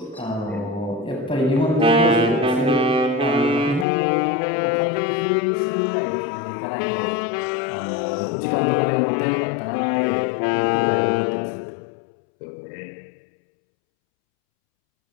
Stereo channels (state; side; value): drops out; right; at 3.9 s